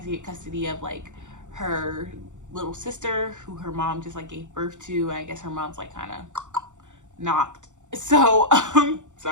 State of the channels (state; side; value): late; left; 0.85 ms